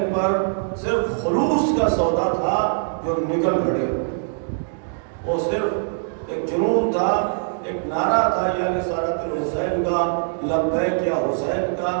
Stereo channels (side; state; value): left; silent; digital silence